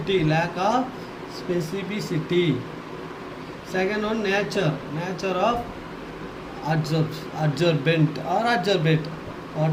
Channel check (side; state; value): both; identical; correlation 1.00